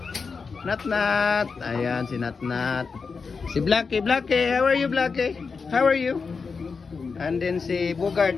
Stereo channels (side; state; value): right; quieter; 5.0 dB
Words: Natnat. Ayan si Natnat. Si Blackie, Blackie. How are you, Blackie? How are you? And then si